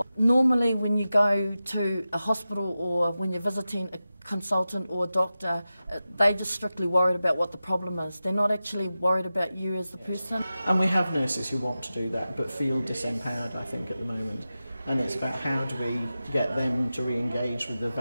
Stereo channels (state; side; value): inverted; both; correlation -0.94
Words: Normally when you go to a hospital or when you're visiting a consultant or a doctor, they're just strictly worried about what the problem is. They're not actually worried about you as the person. And we have nurses who want to do that but feel disempowered, I think, at the moment. And it's about how do we get them to re-engage with the